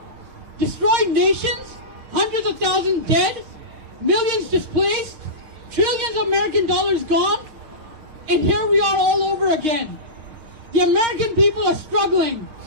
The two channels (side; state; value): left; late; 6.7 ms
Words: Destroyed nations, hundreds of thousands dead, millions displaced, trillions of American dollars gone, and here we are all over again. The American people are struggling.